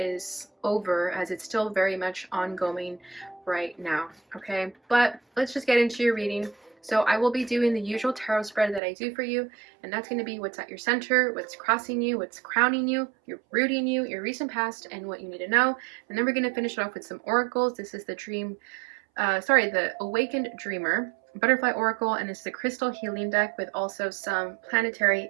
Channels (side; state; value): left; drops out; at 8.8 s